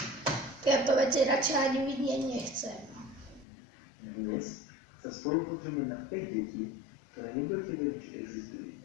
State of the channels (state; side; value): drops out; right; at 3.5 s